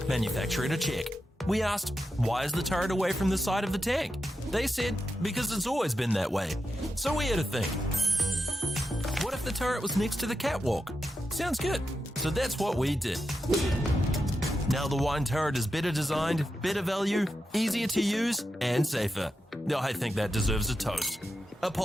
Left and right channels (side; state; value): both; normal; correlation 0.88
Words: manufacturer to check. We asked, why is the turret away from the side of the tank? They said, because it's always been that way. So we had to think. What if the turret was next to the catwalk? Sounds good. So that's what we did. Now the wine turret is better designed, better value, easier to use, and safer. Now I think that deserves a toast.